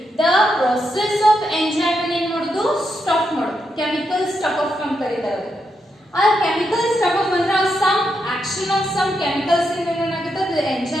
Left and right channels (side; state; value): both; normal; correlation 0.83